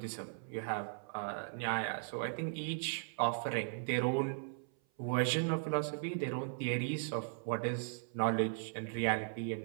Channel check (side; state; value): left; silent; 53 dB below the other